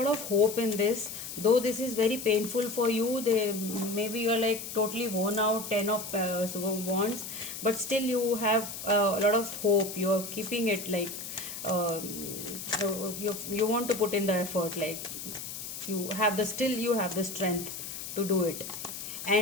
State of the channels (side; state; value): left; noise; hiss, 8 dB below the sound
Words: of hope in this. Though this is very painful for you, maybe you're like totally worn out, Ten of Wands, but still you have a lot of hope. You're keeping it like you want to put in the effort, like you have the strength to do it.